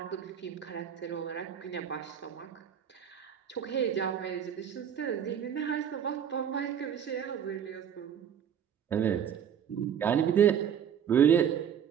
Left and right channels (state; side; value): quieter; left; 8.6 dB